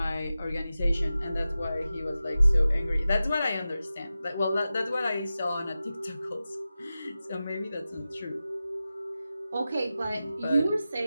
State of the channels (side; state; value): both; inverted; correlation -0.93